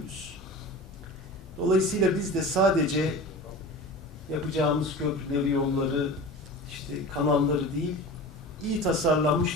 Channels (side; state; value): both; normal; correlation 0.34